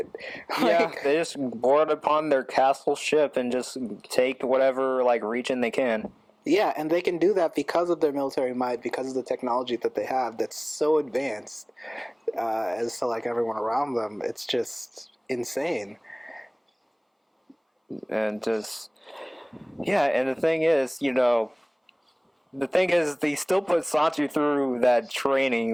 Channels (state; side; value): identical; both; correlation 1.00